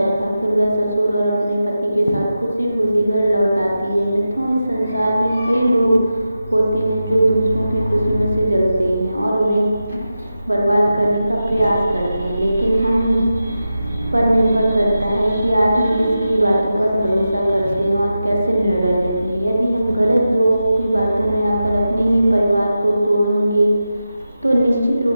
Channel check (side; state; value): both; inverted; correlation -0.91